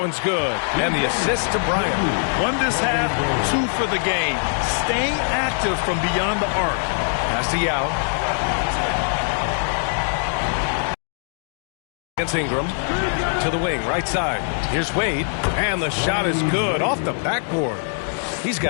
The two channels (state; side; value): silent; right; digital silence